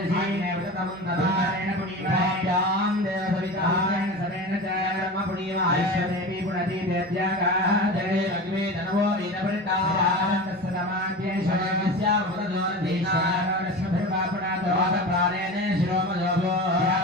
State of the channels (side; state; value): right; noise; hum, 28 dB below the sound